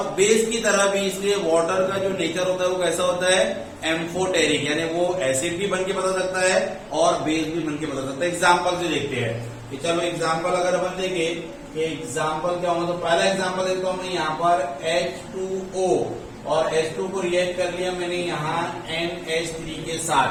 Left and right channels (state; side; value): identical; both; correlation 1.00